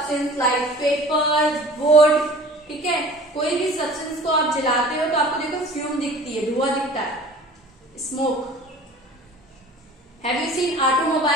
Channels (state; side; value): normal; both; correlation 0.44